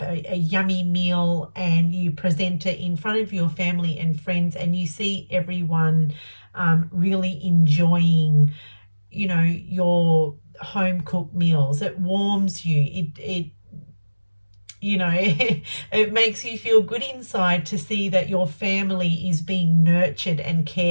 a yummy meal and you present it in front of your family and friends and you see everyone really enjoying, your home-cooked meals. It warms you. It it makes you feel good inside to see that your family is being nurtured and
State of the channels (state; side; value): inverted; both; correlation -1.00